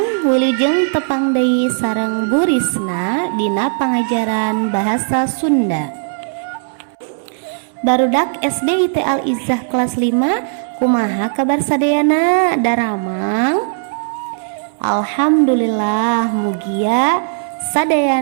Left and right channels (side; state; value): left; silent; 68 dB below the other